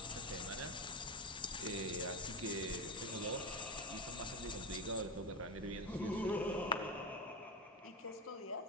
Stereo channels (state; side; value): normal; both; correlation 0.18